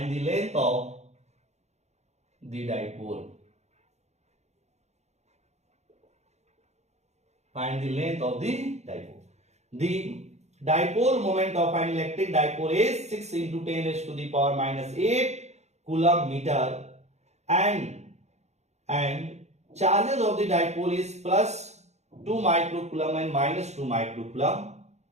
the dipole। Find the length of the dipole. The dipole moment of an electric dipole is 6 into 10 raised to the power minus 8 coulomb meter and charges of the dipole is plus 2 microcoulomb and minus 2 microcoulomb,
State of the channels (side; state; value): left; late; 0.32 ms